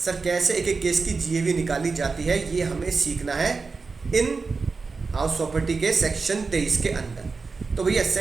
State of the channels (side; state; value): left; quieter; 4.4 dB